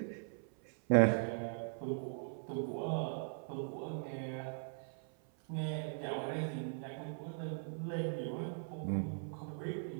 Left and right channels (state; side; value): silent; left; 51 dB below the other